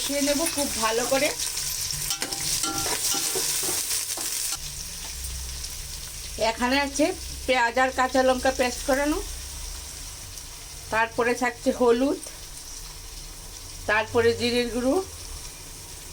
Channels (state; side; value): identical; both; correlation 1.00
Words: নেব খুব ভালো করে। এখানে আছে পেঁয়াজ আর কাঁচা লঙ্কা পেস্ট করানো, তারপরে থাকছে হলুদ, তারপরে জিরের গুঁড়ো,